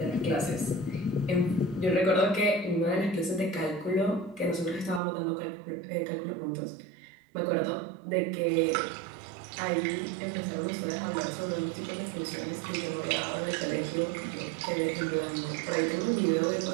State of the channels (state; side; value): drops out; left; at 5.0 s